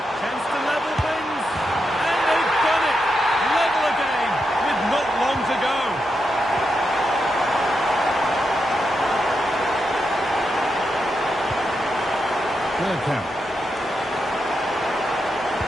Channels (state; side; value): normal; both; correlation 0.85